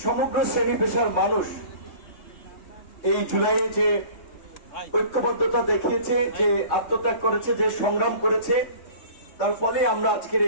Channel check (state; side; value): late; right; 3.2 ms